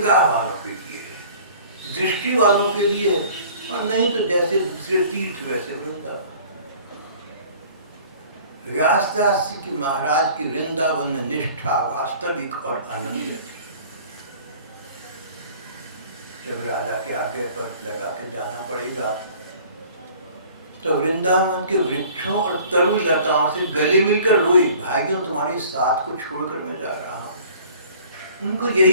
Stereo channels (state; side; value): inverted; both; correlation -0.49